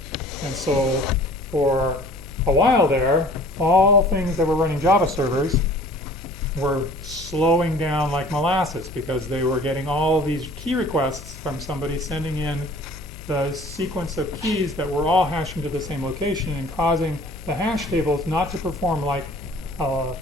And so for a while there, all things that were running Java servers were slowing down like molasses because they were getting all these key requests from somebody sending in the sequence of keys that were all hashing to the same location and causing the hash tables not to perform like a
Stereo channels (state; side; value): noise; left; hum, 16 dB below the sound